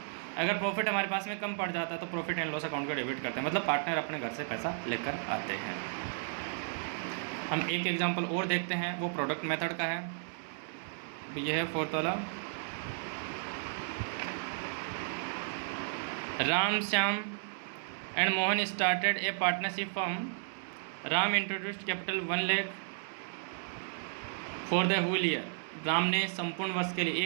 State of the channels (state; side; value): silent; left; digital silence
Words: अगर प्रॉफिट हमारे पास में कम पड़ जाता है तो प्रॉफिट एंड लॉस अकाउंट को डेबिट करते हैं, मतलब पार्टनर अपने घर से पैसा लेकर आते हैं। हम एक एग्जांपल और देखते हैं, वो प्रोडक्ट मेथड का है। ये है फोर्थ वाला, Ram Shyam and Mohan started a partnership firm. Ram introduced capital 1 lakh for the whole year. Ram ने संपूर्ण वर्ष के लिए,